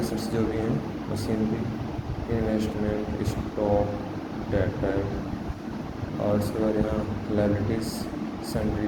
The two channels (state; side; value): identical; both; correlation 1.00